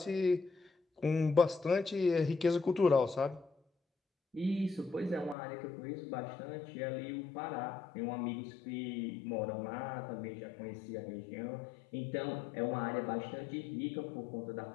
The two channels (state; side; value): drops out; right; at 5.4 s